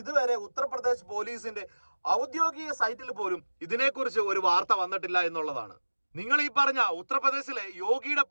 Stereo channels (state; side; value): inverted; both; correlation -1.00